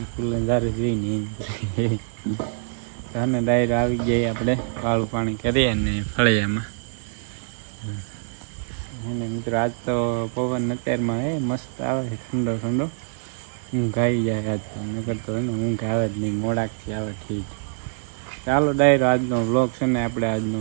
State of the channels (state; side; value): silent; left; 58 dB below the other